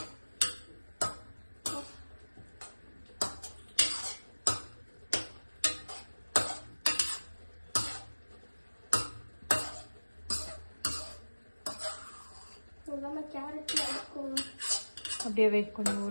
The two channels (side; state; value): both; inverted; correlation -1.00